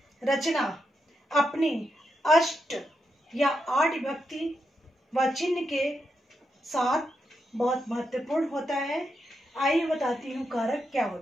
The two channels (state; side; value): normal; both; correlation 0.84